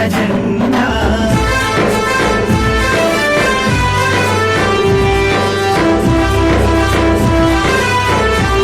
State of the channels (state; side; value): identical; both; correlation 1.00